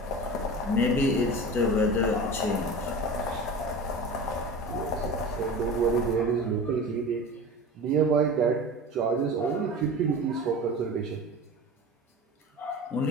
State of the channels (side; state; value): both; normal; correlation 0.33